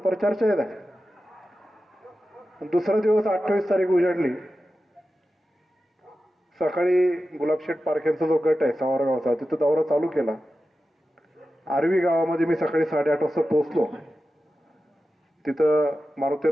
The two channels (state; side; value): normal; both; correlation 0.93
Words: येत आहे. दुसरा दिवस 28 तारीख उजाडली. सकाळी गुलाबशेठ पारख्यांचा जो गट आहे सावरगावचा, तिथं दौरा चालू केला. आरवी गावामध्ये मी सकाळी 8:30 वाजता पोहोचलो. तिथं